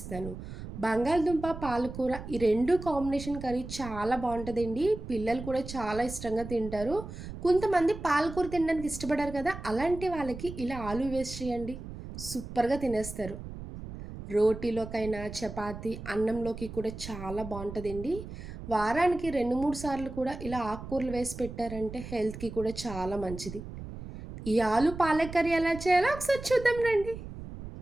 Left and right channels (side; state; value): right; noise; rumble, 11 dB below the sound